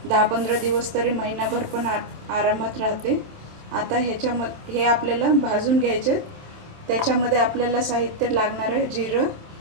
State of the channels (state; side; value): late; left; 27 ms